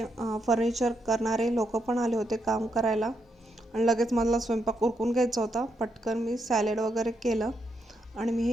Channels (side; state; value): both; normal; correlation 0.80